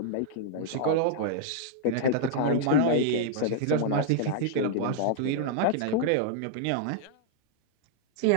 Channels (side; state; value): both; different; correlation -0.01